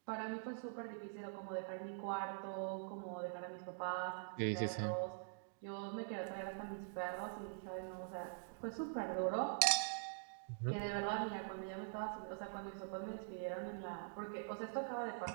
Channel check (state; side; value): silent; left; digital silence